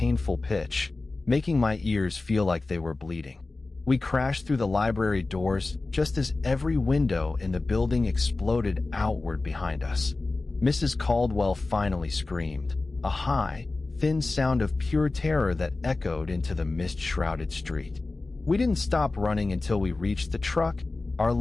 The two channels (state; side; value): quieter; right; 3.4 dB